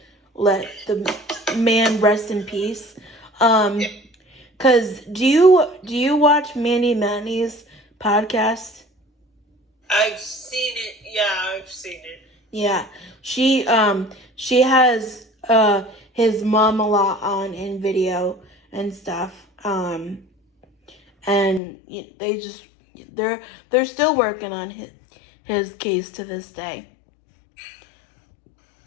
let the man rest in peace. Cause do you watch Mandy Manny's podcast? I've seen it. Yeah, I've seen it. Yeah, she has his mom a lot on in video and stuff. And they just they're still working on his case to this day.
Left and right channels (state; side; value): drops out; right; at 21.6 s